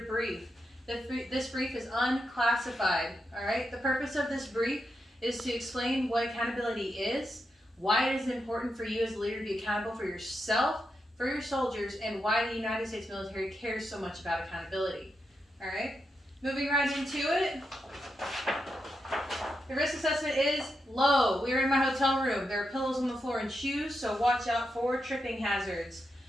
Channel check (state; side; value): normal; both; correlation 0.85